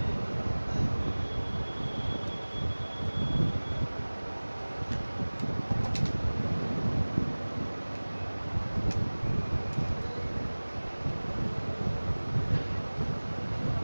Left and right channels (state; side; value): inverted; both; correlation -1.00